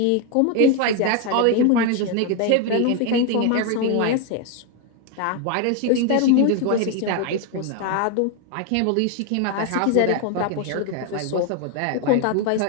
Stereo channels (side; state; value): both; different; correlation 0.01